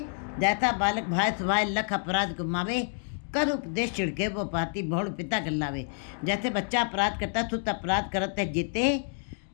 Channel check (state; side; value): silent; right; 59 dB below the other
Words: जैसा बालक भाई सुभाय लख अपराध को मावे, कर उपदेश छिड़के वो पाती बहुड़ पिता गल्लावे। जैसे बच्चा अपराध करता सुत अपराध करते जेते,